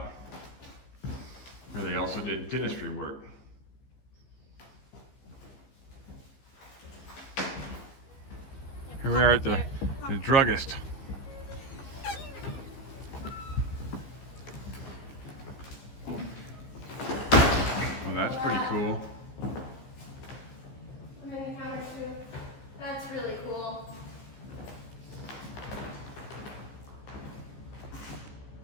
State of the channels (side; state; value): right; late; 15 ms